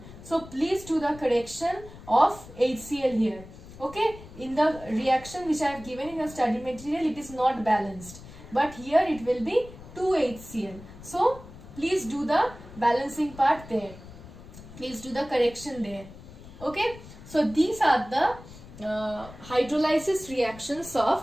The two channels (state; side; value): noise; left; rumble, 17 dB below the sound